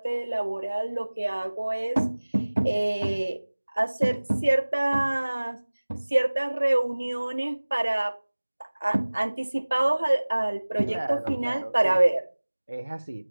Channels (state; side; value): inverted; both; correlation -1.00